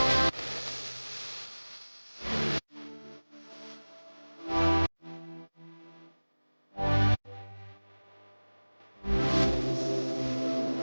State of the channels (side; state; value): both; inverted; correlation -1.00